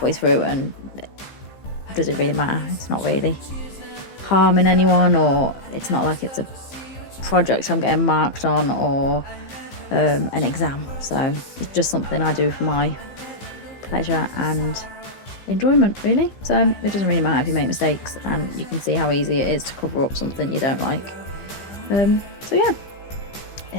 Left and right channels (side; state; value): right; late; 15 ms